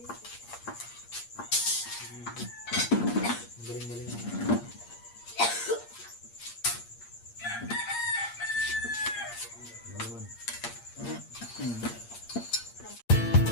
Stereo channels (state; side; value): late; right; 8.6 ms